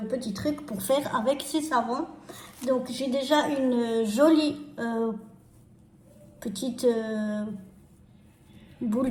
petits trucs pour faire avec ces savons. Donc, j'ai déjà une jolie petite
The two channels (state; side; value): identical; both; correlation 1.00